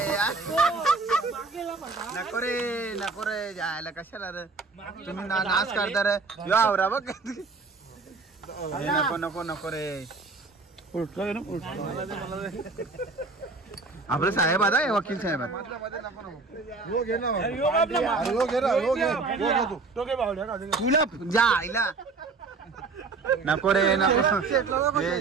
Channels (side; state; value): left; quieter; 4.1 dB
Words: नको रे जायला कशाला रे तुम्ही नाच करता रे. यो आवरा बघ. नको रे. आपलं साहेब आता आहे, वकील साहेब तुला जा आईला नको रे नको